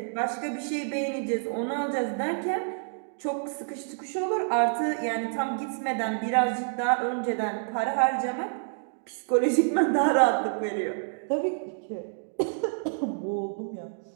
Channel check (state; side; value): silent; left; digital silence